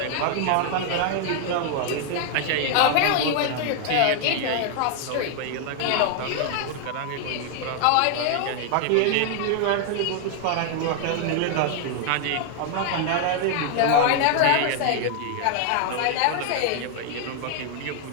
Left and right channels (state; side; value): different; both; correlation 0.00